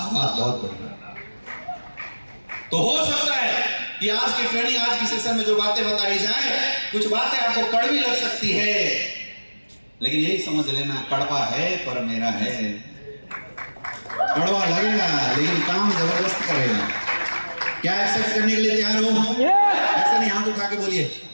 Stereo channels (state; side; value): inverted; both; correlation -1.00